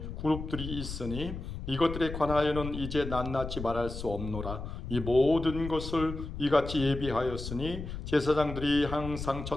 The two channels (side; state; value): left; noise; rumble, 7 dB below the sound